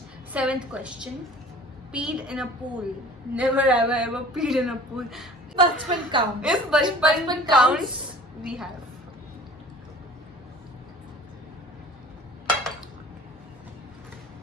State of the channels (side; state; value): both; normal; correlation 0.45